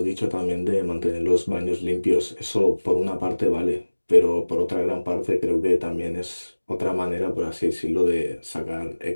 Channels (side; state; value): both; inverted; correlation -1.00